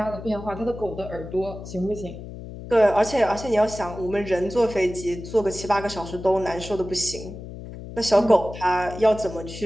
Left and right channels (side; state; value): left; noise; hum, 12 dB below the sound